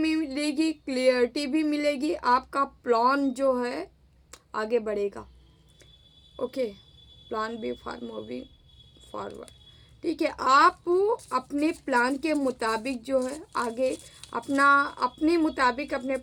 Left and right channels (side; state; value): both; identical; correlation 1.00